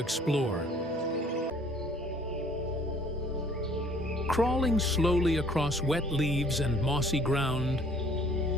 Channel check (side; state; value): both; normal; correlation 0.56